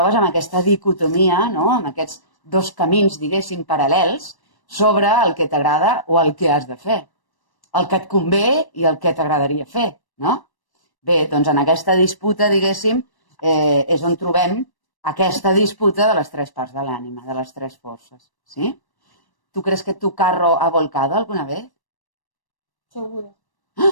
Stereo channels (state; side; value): late; right; 1.1 ms